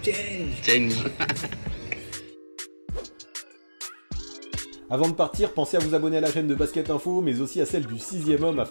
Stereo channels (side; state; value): both; inverted; correlation -1.00